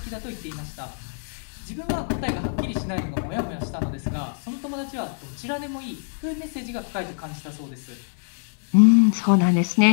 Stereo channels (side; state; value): right; silent; 62 dB below the other